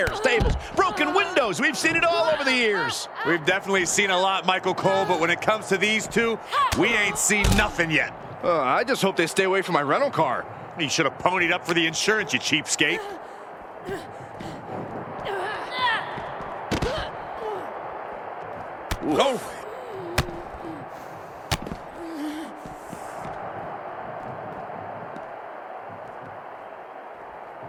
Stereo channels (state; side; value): identical; both; correlation 1.00